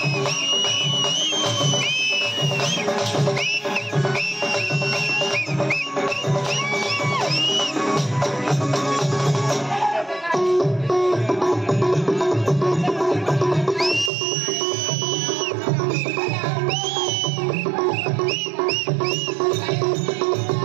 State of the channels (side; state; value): left; drops out; at 14.1 s